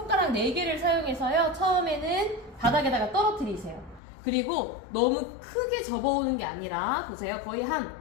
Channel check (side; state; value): right; drops out; at 4.0 s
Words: 4개를 사용해서요. 처음에는 바닥에다가 떨어뜨리세요. 그리고 너무 크게 접어오는 게 아니라 보세요. 거의 한